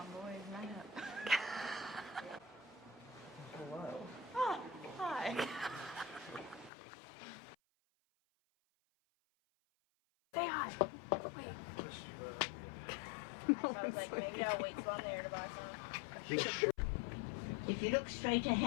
boys, line up. Hello. Oh, hi. Say hi. Wait. No one's looking. If you look straight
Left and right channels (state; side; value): drops out; right; at 6.7 s